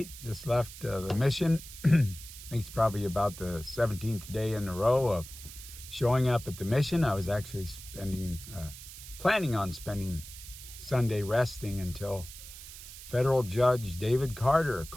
Just left the mission. I think it's probably about the 17th day in a row of showing up at the mission. I was actually planning on spending Sunday resting until federal judge David Carter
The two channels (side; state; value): right; noise; hiss, 14 dB below the sound